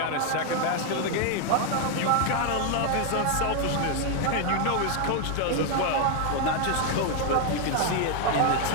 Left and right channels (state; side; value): different; both; correlation 0.00